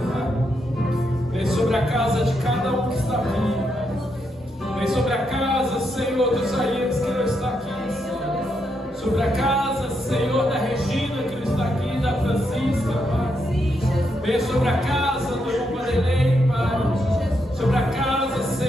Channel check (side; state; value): both; normal; correlation 0.80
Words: Pai. Vem sobre a casa de cada um que está aqui, Pai. Vem sobre a casa, Senhor, do Isaías que não está aqui, Senhor. Sobre a casa, Senhor, da Regina que não está aqui, da Francisca, Pai. Vem sobre a casa do irmão Vanderlei, Pai. Sobre a casa,